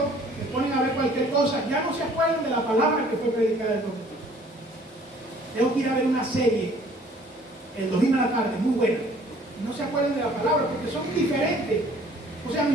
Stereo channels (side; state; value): both; normal; correlation 0.56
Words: se ponen a ver cualquier cosa, ya no se acuerdan de la palabra que fue predicada el domingo. Tengo que ir a ver una serie el domingo a la tarde, muy buena, y no se acuerdan de la palabra porque son diferentes. O sea,